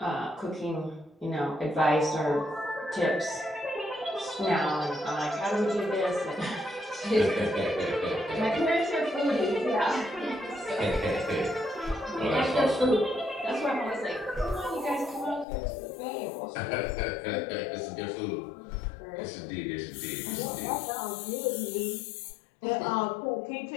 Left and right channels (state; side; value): drops out; right; at 15.5 s